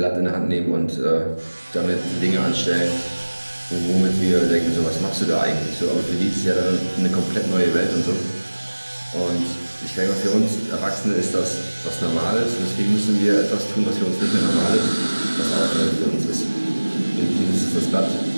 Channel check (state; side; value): inverted; both; correlation -1.00